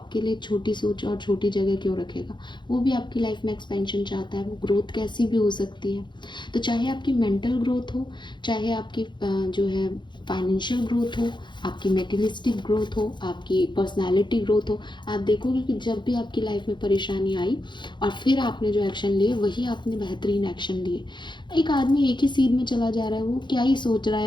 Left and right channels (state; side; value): late; right; 0.22 ms